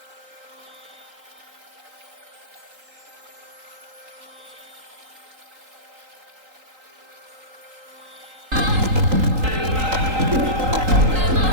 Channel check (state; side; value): late; left; 3.8 ms